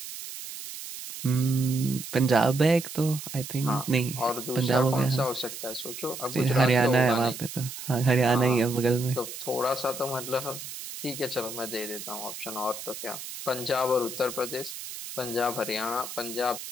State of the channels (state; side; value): noise; right; hiss, 10 dB below the sound